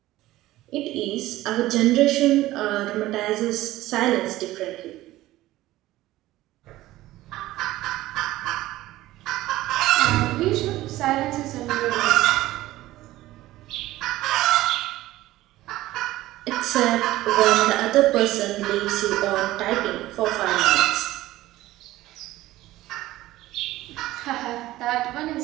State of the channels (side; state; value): left; quieter; 16.3 dB